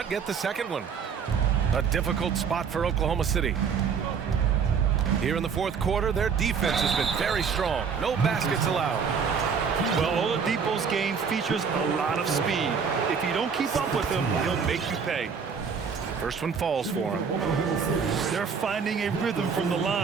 get the second one. A difficult spot for Oklahoma City. Here in the fourth quarter, their defense has been very strong. No baskets allowed. Well, Oladipo's game features a lot of speed. If you don't keep up with him, he'll make you pay. First one falls for him. They're finding a rhythm from the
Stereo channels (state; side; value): quieter; left; 6.2 dB